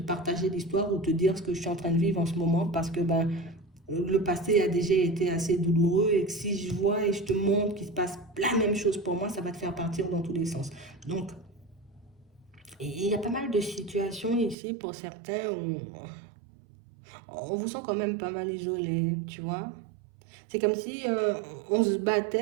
l'histoire ou te dire ce que je suis en train de vivre en ce moment parce que ben, le passé a déjà été assez douloureux et que si je vois et je te montre qu'il se passe la même chose pour moi, ça va te faire partir dans tous les sens. Donc, il y a pas mal de situations ici pour certains où on vous sent quand même pas mal isolé, tu vois. C'est comme si on se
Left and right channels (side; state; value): left; drops out; at 14.6 s